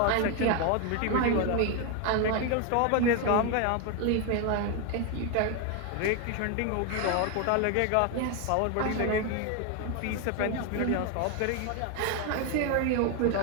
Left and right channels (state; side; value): different; both; correlation 0.01